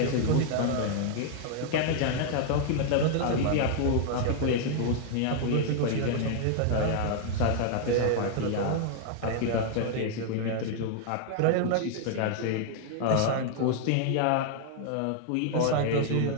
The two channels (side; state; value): both; different; correlation 0.00